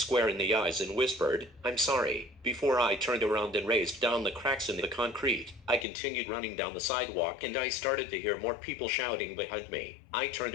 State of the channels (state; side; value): drops out; right; at 5.9 s